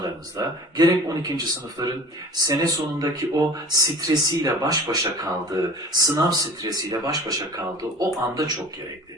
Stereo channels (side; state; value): both; normal; correlation 0.42